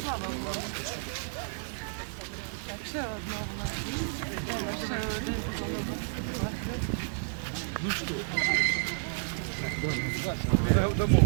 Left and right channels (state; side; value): silent; left; digital silence